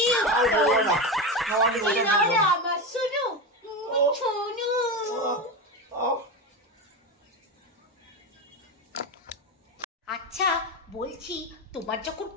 উত্তম। আমার শুনু শুনু। আচ্ছা বলছি, তোমার যখন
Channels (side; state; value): both; normal; correlation 0.18